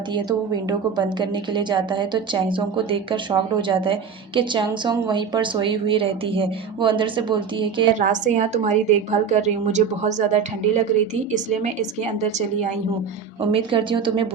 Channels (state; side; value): quieter; left; 6.5 dB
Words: है, तो वो विंडो को बंद करने के लिए जाता है। तो चैंग सोंग को देखकर शॉक्ड हो जाता है कि चैंग सोंग वहीं पर सोई हुई रहती है। वो अंदर से बोलती है कि रात से यहाँ तुम्हारी देखभाल कर रही हूँ, मुझे बहुत ज़्यादा ठंडी लग रही थी, इसलिए मैं इसके अंदर चली आई हूँ। उम्मीद करती हूँ तुम्हें